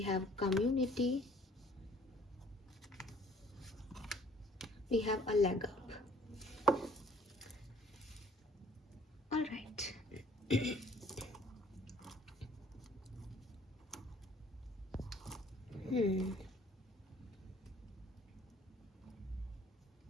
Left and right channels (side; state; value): both; normal; correlation 0.57